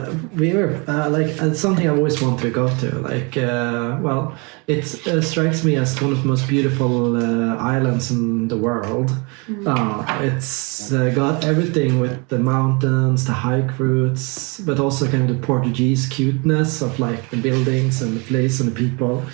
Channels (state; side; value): quieter; left; 30.7 dB